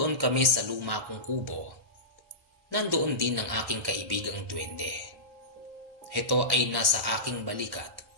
kami sa luma kong kubo, nandoon din ang aking kaibigang duwende. Ito ay nasa aking balikat,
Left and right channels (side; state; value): left; late; 1.1 ms